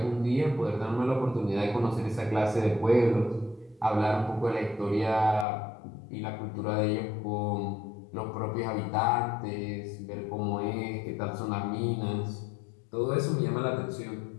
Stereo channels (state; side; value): drops out; right; at 5.5 s